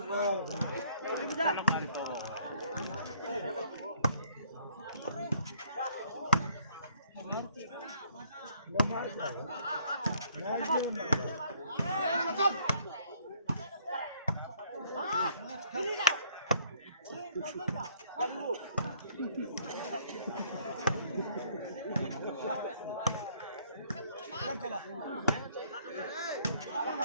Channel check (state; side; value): inverted; both; correlation -0.62